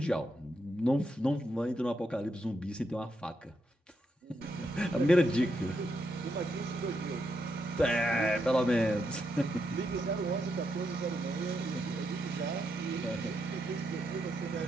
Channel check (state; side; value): normal; both; correlation 0.81